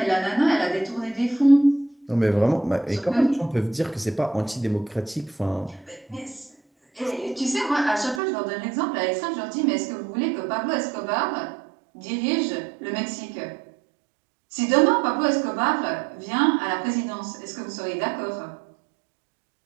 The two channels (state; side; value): drops out; left; at 8.2 s